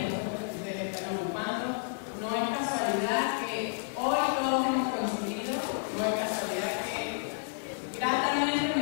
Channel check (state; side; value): silent; right; digital silence